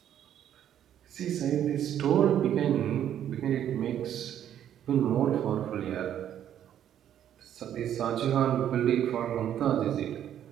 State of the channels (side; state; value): left; quieter; 10.4 dB